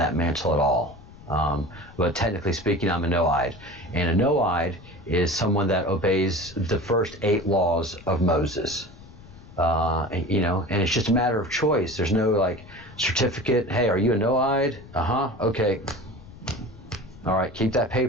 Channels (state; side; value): noise; left; rumble, 20 dB below the sound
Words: mantle at all. But technically speaking, I'm a no-ide. And a no-ide is someone that obeys the first 8 laws of Moses. And it's just a matter of choice. There's no certificate. Hey, are you a no-ide? Okay. All right, keep that